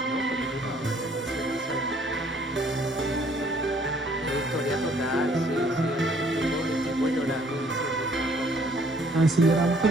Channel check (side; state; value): both; normal; correlation 0.61